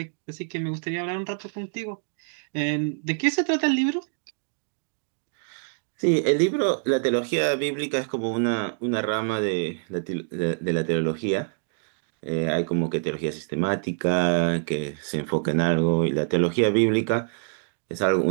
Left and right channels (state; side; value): silent; left; digital silence